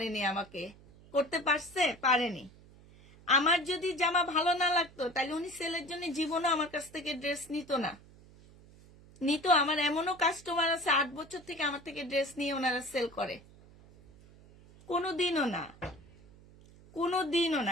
আমাকে করতে পারেনি। আমার যদি জামা ভালো না লাগতো তাহলে উনি সেলের জন্য জীবনে আমার কাছ থেকে ড্রেস নিত না। আমার এমনও কাস্টমার আছে 8 বছর থেকে আমার থেকে ড্রেস নিয়ে ওনারা সেল করে, কোনোদিনও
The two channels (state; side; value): noise; right; hum, 23 dB below the sound